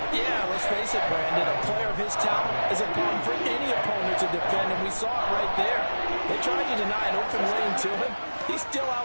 Yeah, let's face it, Brandon. A player of his talent is a problem for any opponent to defend, and we saw it right there. They tried to deny an open lane to him. He still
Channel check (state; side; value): inverted; both; correlation -1.00